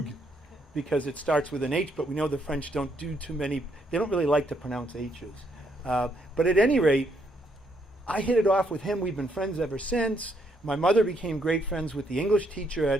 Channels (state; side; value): normal; both; correlation 0.73